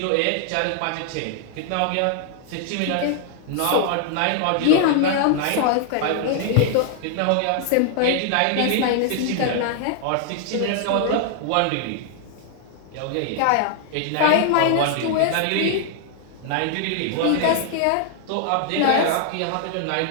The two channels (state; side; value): different; both; correlation 0.00